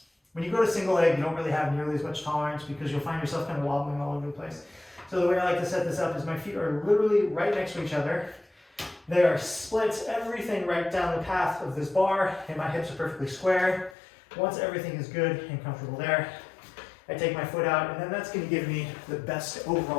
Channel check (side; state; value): right; drops out; at 14.0 s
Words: When you go to single leg, you don't really have nearly as much tolerance because you'll find yourself kind of wobbling all over the place. So the way I like to set this up is my feet are literally right next to each other. They are split, everything right down the path of this bar, and my hips are perfectly square. Once everything is good and comfortable there, I take my foot out, and then that's going to give me the best